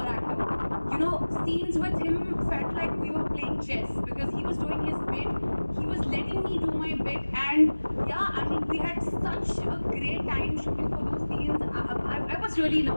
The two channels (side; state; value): both; inverted; correlation -1.00